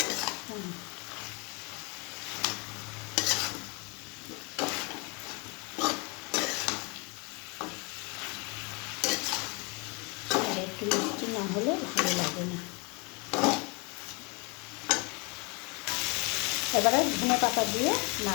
একটু মিষ্টি না হলে ভালো লাগে না। এবারে ধনে পাতা দিয়ে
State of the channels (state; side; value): quieter; right; 28.9 dB